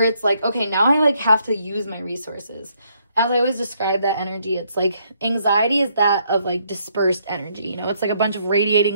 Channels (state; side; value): inverted; both; correlation -0.71